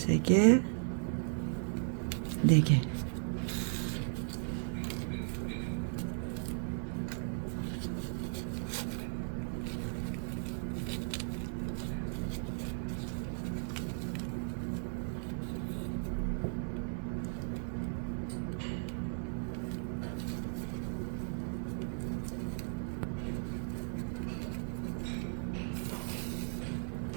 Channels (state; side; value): silent; left; digital silence